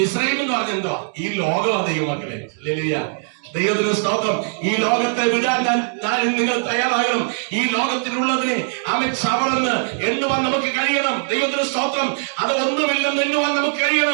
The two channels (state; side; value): silent; left; 65 dB below the other